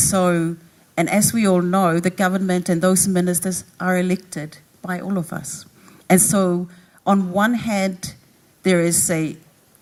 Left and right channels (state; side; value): identical; both; correlation 1.00